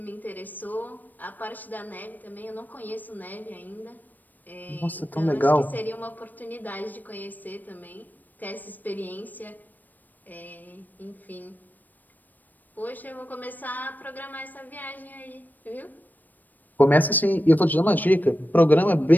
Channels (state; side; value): late; right; 0.087 ms